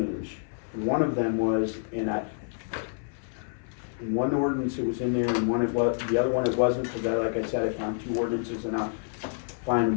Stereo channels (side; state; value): right; silent; 55 dB below the other